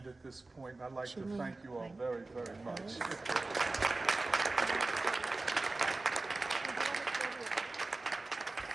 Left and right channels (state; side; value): quieter; left; 3.3 dB